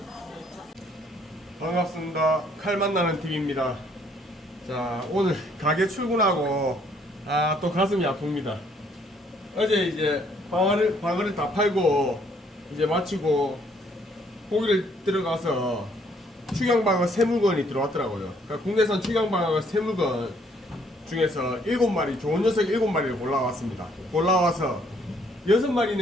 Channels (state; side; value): normal; both; correlation 0.65